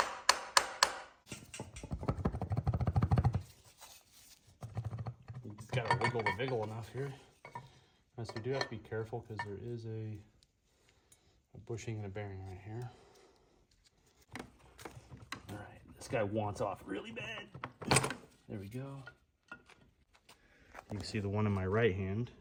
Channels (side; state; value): both; identical; correlation 1.00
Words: It's got to wiggle the wiggle enough here. So we do have to be careful because there is a bushing and a bearing right here. All right, this guy wants off really bad. There we go. You can see the one in my right hand